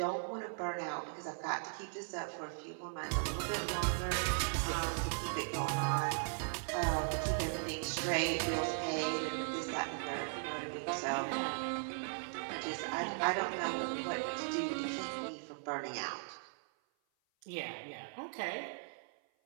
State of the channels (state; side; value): silent; left; 52 dB below the other